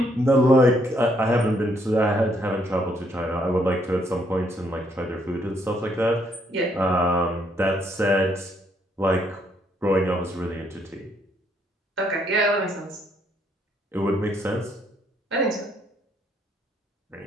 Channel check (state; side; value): normal; both; correlation 0.71